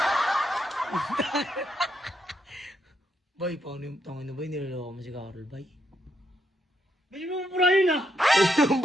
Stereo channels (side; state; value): both; normal; correlation 0.78